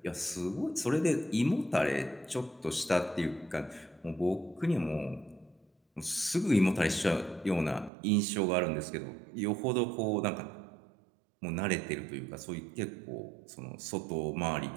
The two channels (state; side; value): drops out; left; at 7.9 s